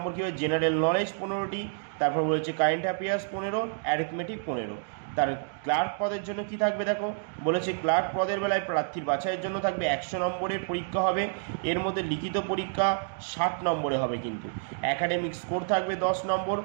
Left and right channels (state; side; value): silent; left; digital silence